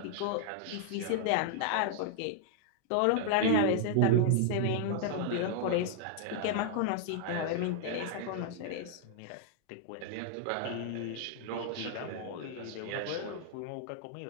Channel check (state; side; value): different; both; correlation 0.00